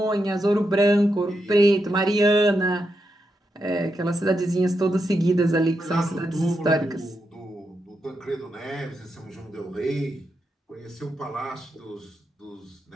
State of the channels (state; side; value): normal; both; correlation 0.84